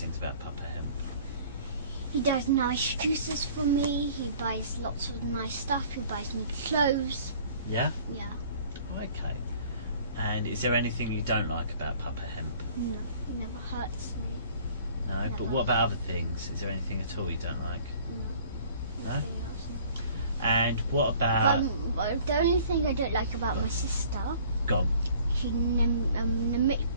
about Papa Hemp. He does nice juices for me. He buys lots of nice stuff. He buys me clothes. Yeah? Yeah. Okay. And is there anything you don't like about Papa Hemp? No, he never hurts me. No, Never. but what about other things? Is there anything at all you don't like? No. No? Nothing else. And what about... But the only thing I don't like about my sister, Go on. she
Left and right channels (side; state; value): both; inverted; correlation -0.52